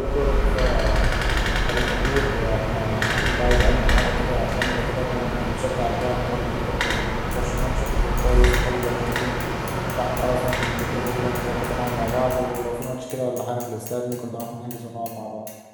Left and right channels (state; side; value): identical; both; correlation 1.00